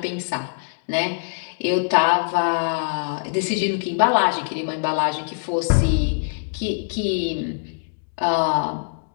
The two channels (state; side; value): silent; right; digital silence